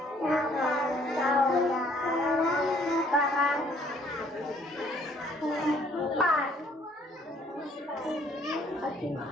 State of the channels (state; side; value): normal; both; correlation 0.62